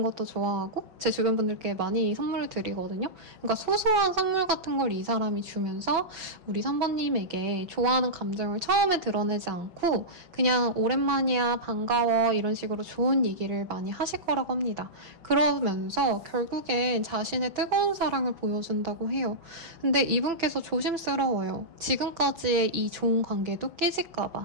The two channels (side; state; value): left; late; 5.7 ms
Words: 것도 좋아하고 제 주변 분들께 많이 선물을 드리거든요. 그러니까 소소한 선물 같은 걸 이 사람이 주면서 우리 3번님에게 좋아하는 감정을 처음에 드러내지 않고 그냥 오랜만이야 반가워 이런 식으로 좋은 얘기를 많이 하실 거라고 합니다. 그러면서 결국엔 자신의 뜨거운 사랑을 보여준다고 해요. 근데 이분께서 조심스러워요. 지금까지의 이 좋은 관계도